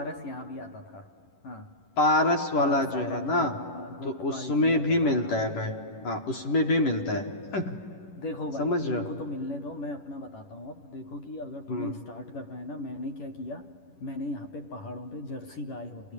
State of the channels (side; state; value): right; late; 11 ms